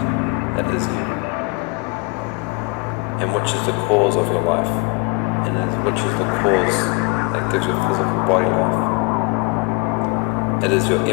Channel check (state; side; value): quieter; right; 30.0 dB